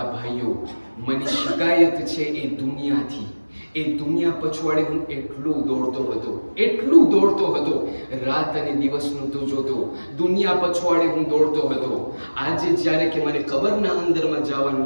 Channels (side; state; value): both; inverted; correlation -1.00